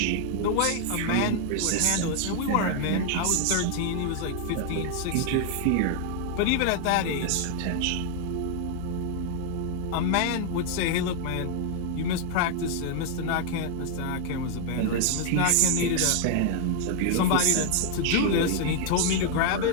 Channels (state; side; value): different; both; correlation 0.00